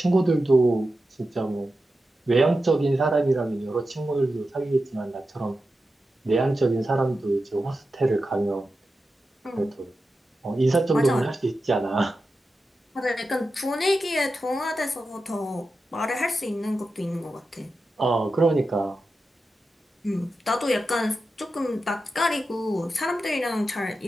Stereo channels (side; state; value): both; normal; correlation 0.91